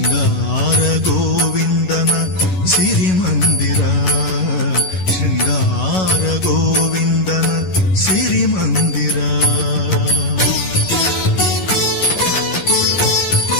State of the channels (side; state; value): right; late; 11 ms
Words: ಗೋವಿಂದನ ಸಿರಿಮಂದಿರ. ಶೃಂಗಾರ ಗೋವಿಂದನ ಸಿರಿಮಂದಿರ.